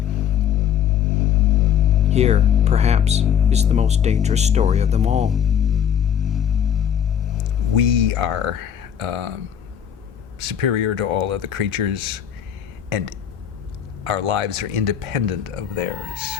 Here, perhaps, is the most dangerous story of them all. We are superior to all other creatures, and our lives are independent of theirs.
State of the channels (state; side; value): quieter; right; 8.9 dB